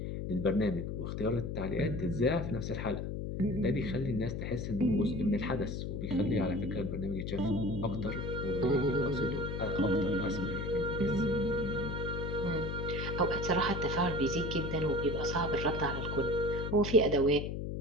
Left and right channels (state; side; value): noise; left; hum, 4 dB below the sound